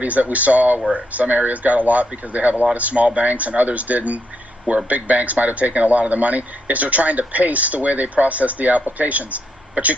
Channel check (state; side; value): normal; both; correlation 0.78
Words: that we saw, where some areas got a lot because they have a lot of small banks and others didn't, where big banks might have taken a lot of the money, is they're trying to pace the way they process the applications. But you